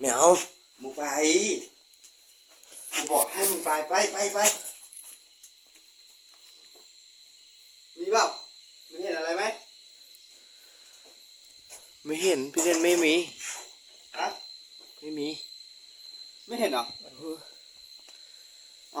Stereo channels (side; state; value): both; identical; correlation 1.00